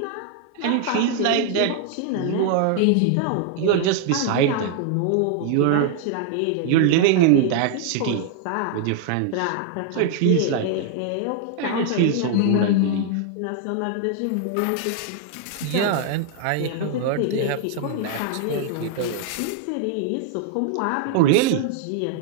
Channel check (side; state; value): both; different; correlation 0.00